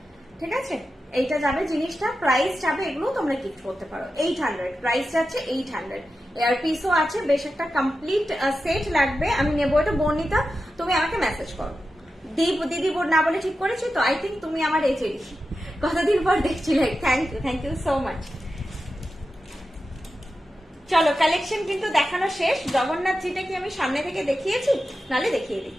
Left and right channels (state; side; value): normal; both; correlation 0.91